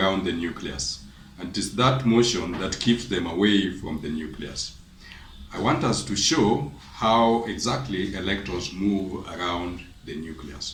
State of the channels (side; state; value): both; identical; correlation 1.00